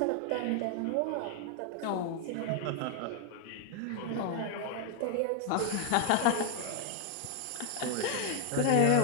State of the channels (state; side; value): different; both; correlation 0.00